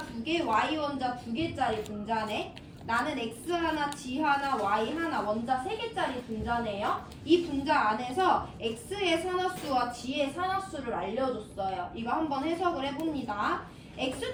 Y 원자 2개짜리 분자네. 나는 X 하나, G 하나, Y 하나, 원자 3개짜리 분자네요. 이 분자 안에서 X의 산화수와 G의 산화수를 알려줬어요. 이거 한번 해석을 해봅니다.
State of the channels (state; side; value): identical; both; correlation 1.00